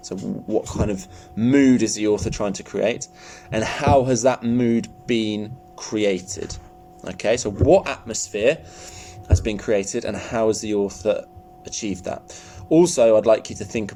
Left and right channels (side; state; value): both; identical; correlation 1.00